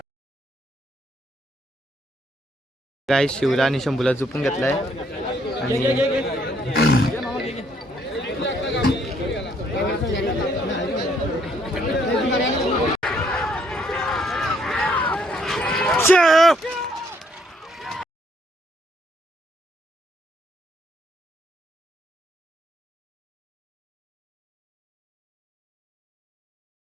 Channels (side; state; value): both; normal; correlation 0.68